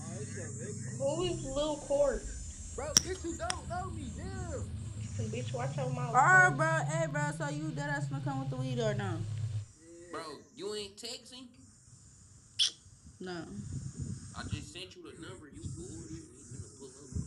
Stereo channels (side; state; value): both; identical; correlation 1.00